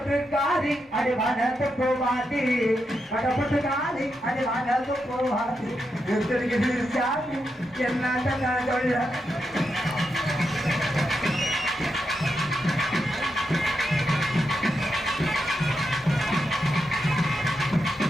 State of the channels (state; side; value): normal; both; correlation 0.85